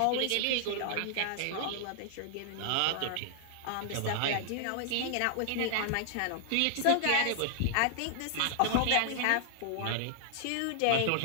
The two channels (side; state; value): both; different; correlation -0.01